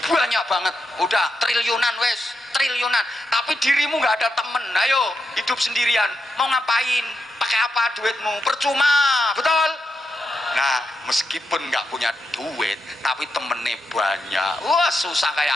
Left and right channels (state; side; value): normal; both; correlation 0.85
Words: banyak banget, udah triliunan wes, triliunan. Tapi dirimu nggak ada temen, ayo hidup sendirian. Mau ngapain? Pakai apa duitmu? Percuma, betul? Nah, meskipun nggak punya duit, tapi temennya banyak. Wah, susah kayak